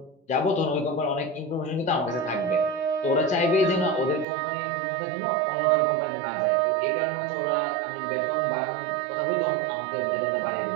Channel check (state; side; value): drops out; left; at 4.2 s